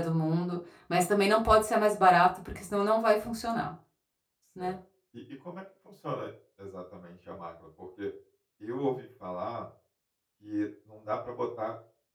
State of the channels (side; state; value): both; identical; correlation 1.00